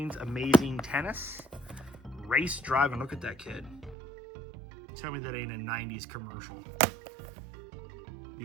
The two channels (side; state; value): left; drops out; at 4.0 s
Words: Amazing Tennis, Race Driving. Look at that kid. Tell me that ain't a 90s commercial.